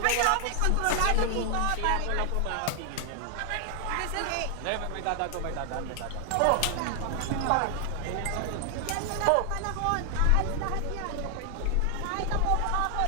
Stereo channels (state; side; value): different; both; correlation 0.00